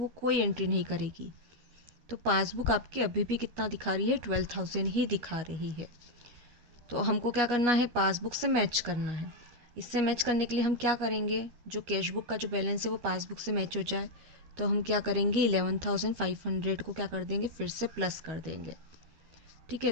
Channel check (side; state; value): left; late; 12 ms